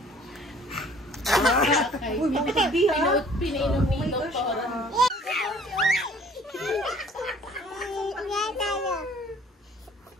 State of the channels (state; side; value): normal; both; correlation 0.54